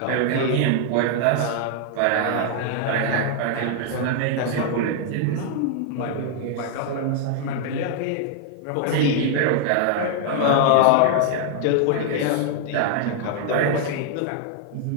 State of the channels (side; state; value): both; different; correlation 0.00